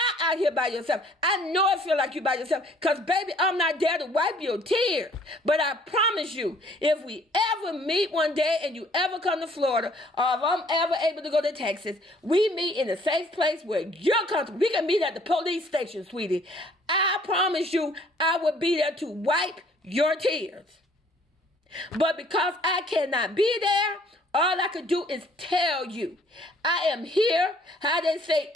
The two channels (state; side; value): normal; both; correlation 0.59